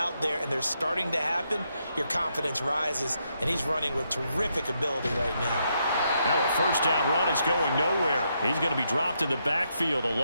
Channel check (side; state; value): both; inverted; correlation -0.79